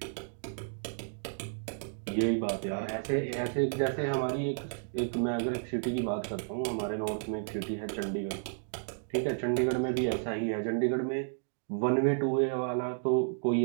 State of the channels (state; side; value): silent; left; digital silence